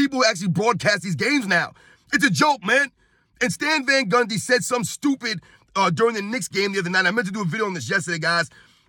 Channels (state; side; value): identical; both; correlation 1.00